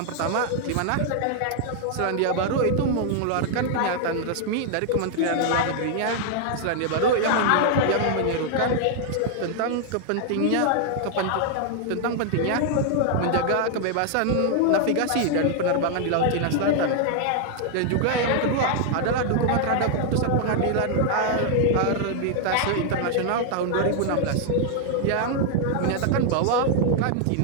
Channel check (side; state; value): both; different; correlation 0.00